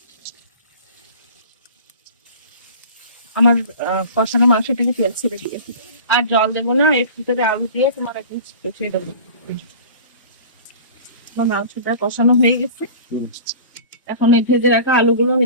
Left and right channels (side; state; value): both; inverted; correlation -0.39